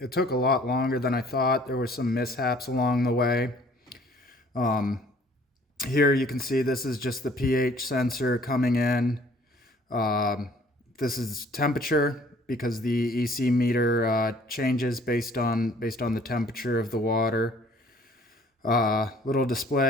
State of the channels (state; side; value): normal; both; correlation 0.56